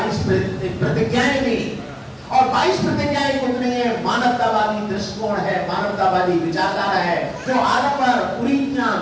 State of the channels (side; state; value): both; identical; correlation 1.00